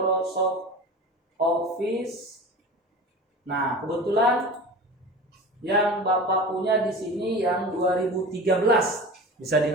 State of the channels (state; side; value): normal; both; correlation 0.34